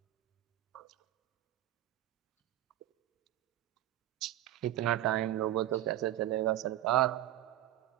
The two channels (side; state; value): left; quieter; 13.9 dB